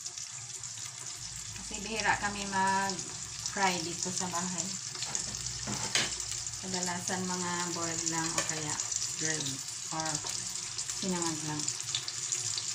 Kasi bihira kami mag-fry dito sa bahay. Kadalasan mga boiled lang o kaya grilled or sinangag lang.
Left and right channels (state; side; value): identical; both; correlation 1.00